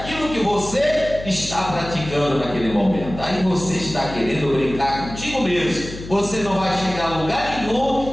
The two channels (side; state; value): left; noise; hum, 12 dB below the sound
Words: que você está praticando naquele momento. aí você está querendo brincar contigo mesmo. Você não vai chegar a lugar